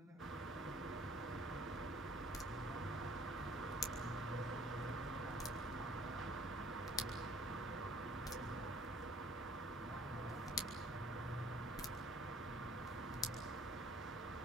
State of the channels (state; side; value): normal; both; correlation 0.57